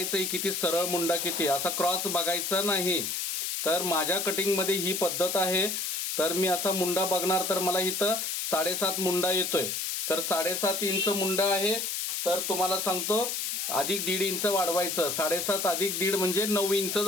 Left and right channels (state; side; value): noise; left; hiss, 2 dB below the sound